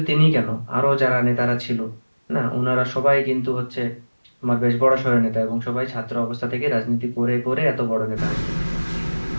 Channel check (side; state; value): both; inverted; correlation -1.00